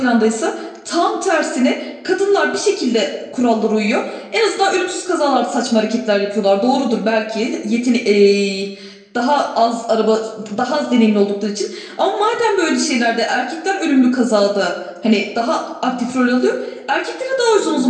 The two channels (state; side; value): identical; both; correlation 1.00